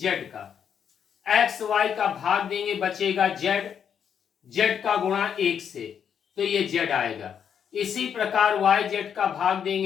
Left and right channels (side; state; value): right; quieter; 8.0 dB